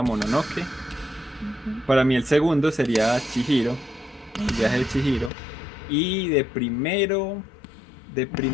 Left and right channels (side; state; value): right; drops out; at 5.3 s